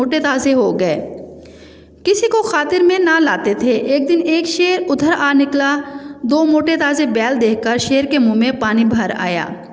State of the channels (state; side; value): identical; both; correlation 1.00